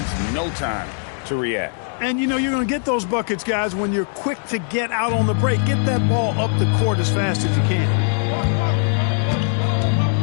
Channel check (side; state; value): right; silent; 60 dB below the other